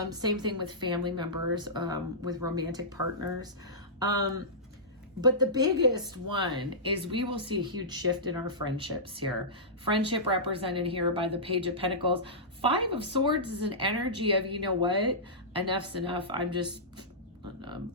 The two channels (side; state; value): both; normal; correlation -0.16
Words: Same thing with family members, with romantic partners. But the biggest one is we will see a huge shift in our friendships here. Friendship represented here by the Page of Pentacles. 5 of Swords is an energy of, you know what, enough's enough. I'm just